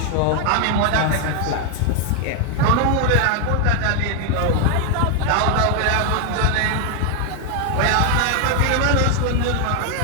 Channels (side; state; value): both; different; correlation 0.00